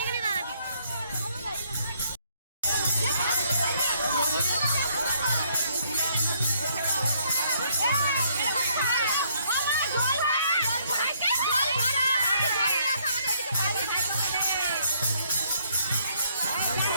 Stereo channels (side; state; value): both; inverted; correlation -0.68